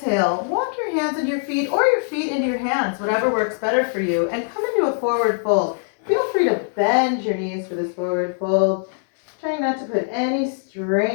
walk your hands into your feet or your feet into your hands, whatever works better for you, and come into a forward fold. Feel free to bend your knees for this forward fold. Trying not to put any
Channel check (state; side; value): silent; right; digital silence